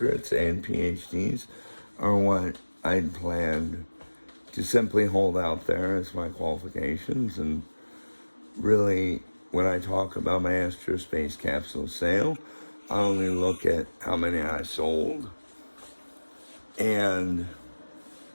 and PhDs, are what I'd planned to simply hold out there as my qualifications. And really, when I talk about my aerospace capsule sale, I only look at how many I sold and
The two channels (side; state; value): both; inverted; correlation -1.00